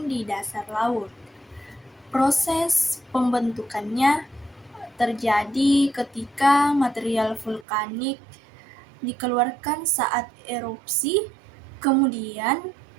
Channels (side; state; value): left; drops out; at 7.7 s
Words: di dasar laut. Proses pembentukannya terjadi ketika material vulkanik dikeluarkan saat erupsi, kemudian